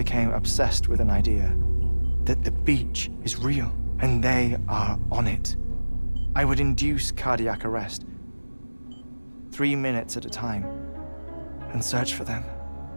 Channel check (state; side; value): inverted; both; correlation -1.00